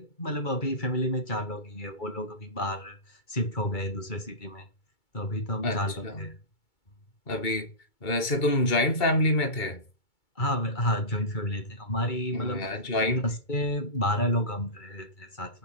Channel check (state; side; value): late; right; 2.2 ms